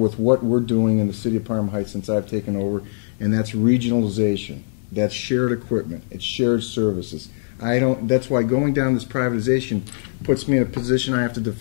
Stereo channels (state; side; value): silent; right; digital silence